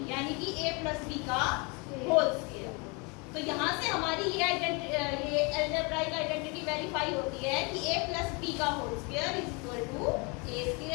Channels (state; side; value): quieter; right; 30.6 dB